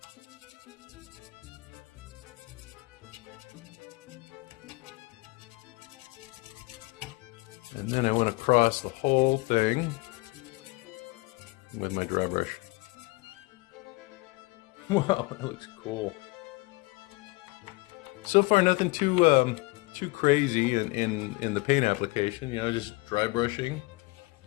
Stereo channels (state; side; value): quieter; right; 24.6 dB